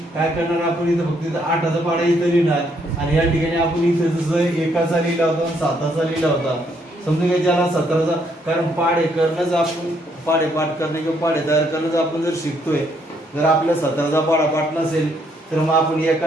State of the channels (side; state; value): both; normal; correlation 0.71